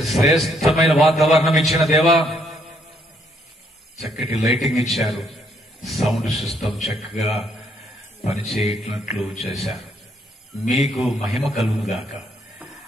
వాతావరణం ఇచ్చిన దేవా, చక్కటి లైటింగ్ ఇచ్చారు, సౌండ్ సిస్టమ్ చక్కగా పనిచేయట్లట్లు చేశారు. మీకు మహిమ కలుగుగాక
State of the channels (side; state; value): both; normal; correlation 0.70